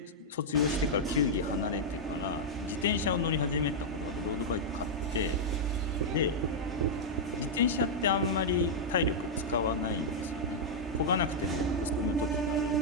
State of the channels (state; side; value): normal; both; correlation -0.05